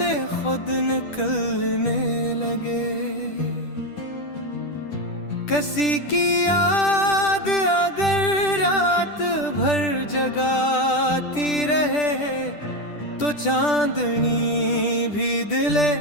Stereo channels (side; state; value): right; late; 10 ms